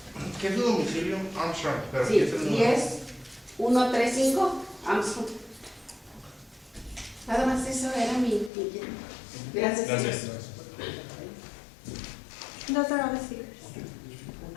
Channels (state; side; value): drops out; right; at 8.5 s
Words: ¿Qué es su domicilio? Armstrong, pero Sí, ¿qué es el número? 10135 Armstrong. Nada más eso era mi inquietud. Gracias. Gracias. Those are all the speakers.